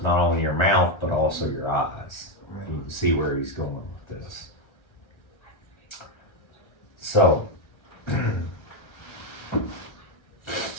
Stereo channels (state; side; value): late; right; 1.3 ms